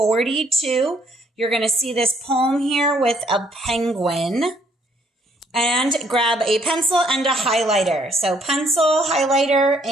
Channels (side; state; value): both; normal; correlation 0.66